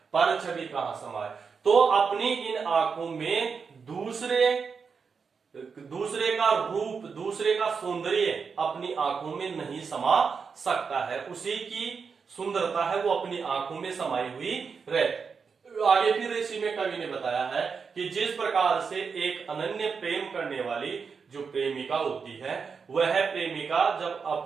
पर छवि कहां समाये? तो अपनी इन आंखों में दूसरे का रूप, दूसरे का सौंदर्य अपनी आंखों में नहीं समा सकता है। उसी की सुंदरता है वो अपनी आंखों में समाई हुई रहती। आगे फिर इसी में कवि ने बताया है कि जिस प्रकार से एक अनन्य प्रेम करने वाली जो प्रेमिका होती है, वह प्रेमिका जब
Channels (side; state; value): left; quieter; 5.6 dB